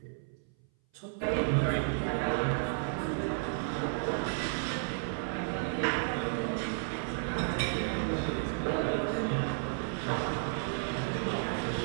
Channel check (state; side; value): silent; left; 56 dB below the other